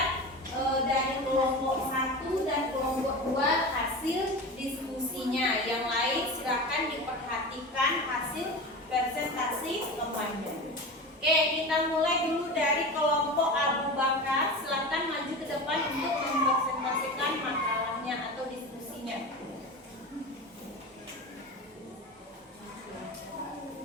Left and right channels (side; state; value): both; normal; correlation 0.28